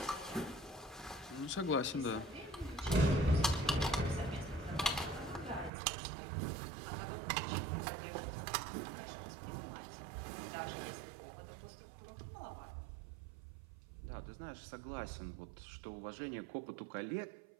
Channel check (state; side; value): drops out; left; at 5.7 s